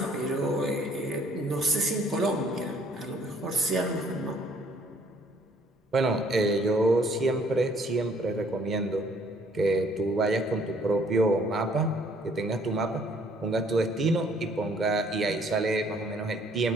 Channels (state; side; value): normal; both; correlation 0.61